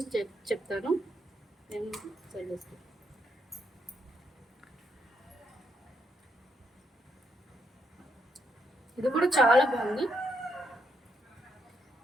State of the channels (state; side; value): normal; both; correlation 0.77